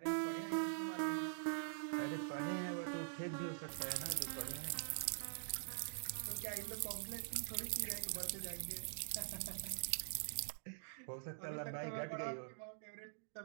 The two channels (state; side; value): silent; left; digital silence